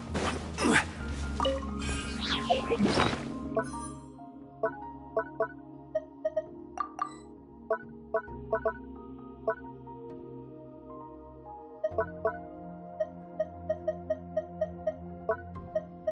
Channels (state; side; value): identical; both; correlation 1.00